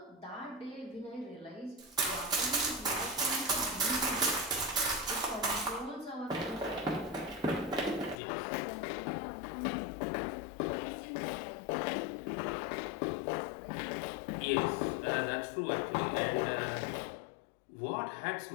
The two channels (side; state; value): right; drops out; at 8.2 s